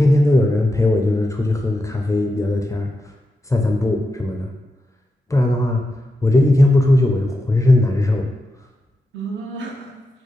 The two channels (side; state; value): both; normal; correlation 0.88